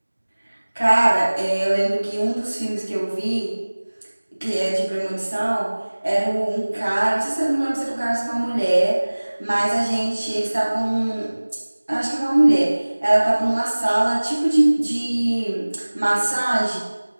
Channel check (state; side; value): inverted; both; correlation -1.00